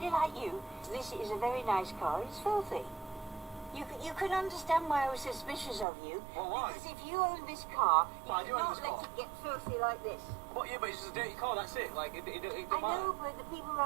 like you? This is a very nice car. It's filthy. You can understand why I was suspicious of you. Well, why? Because if you own this car, you Well, I do own cannot this let car. it get filthy like this. But yeah, but it's just a dirty car, that's it. Like, it I don't matter. know, but the people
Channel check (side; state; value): left; drops out; at 5.9 s